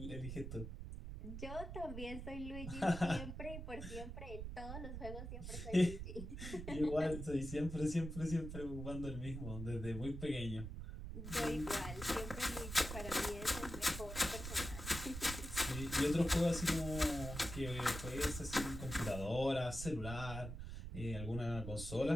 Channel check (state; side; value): noise; right; rumble, 7 dB below the sound